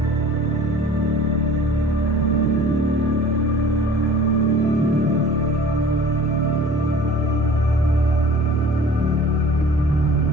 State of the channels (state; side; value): normal; both; correlation 0.45